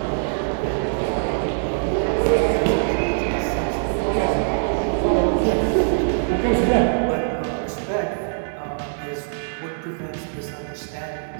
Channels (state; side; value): silent; left; 60 dB below the other